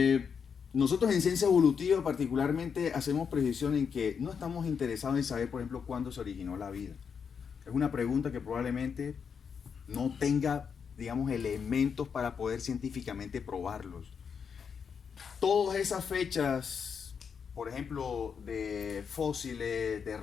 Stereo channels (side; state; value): right; quieter; 6.6 dB